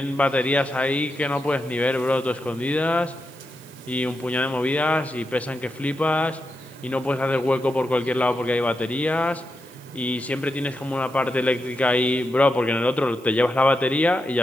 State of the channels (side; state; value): right; noise; hiss, 25 dB below the sound